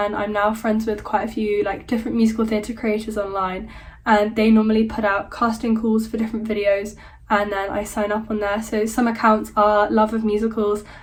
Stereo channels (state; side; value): identical; both; correlation 1.00